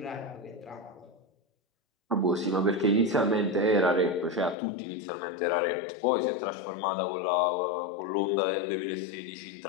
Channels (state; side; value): drops out; right; at 4.5 s